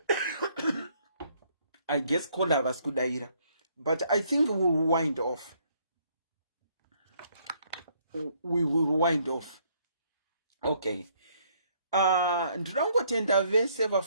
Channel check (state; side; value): inverted; both; correlation -0.67